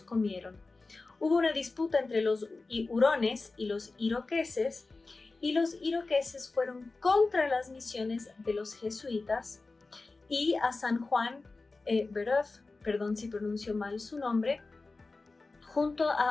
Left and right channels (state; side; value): quieter; right; 3.6 dB